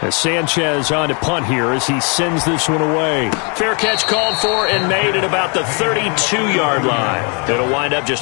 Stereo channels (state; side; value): quieter; right; 36.0 dB